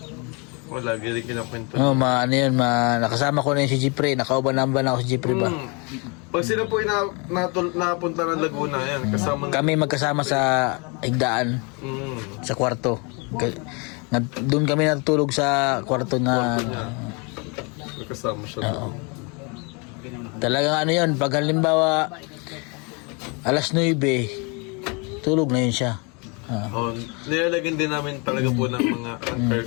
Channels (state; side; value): quieter; right; 31.8 dB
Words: Wala, galing kinakwento. Oh, ano yun, nakasama ko na yun si Jipre. Nakauban-amban ako si Jipre ba? Pag sila po napunta ng Laguna, yan, kasama Kami magkasama sa higdaan, sa kwarto. Doon kami natutulog sa kwarto na... kasama siya. Talagang ano yun, pag halimbawa alas 9, tulog na yun siya. Nilalagyan din namin talaga po ng mga